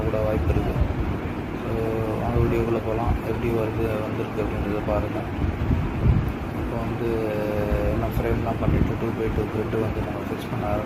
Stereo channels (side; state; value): both; identical; correlation 1.00